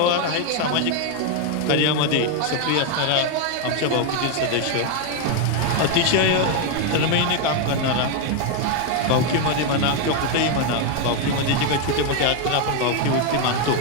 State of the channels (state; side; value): different; both; correlation 0.01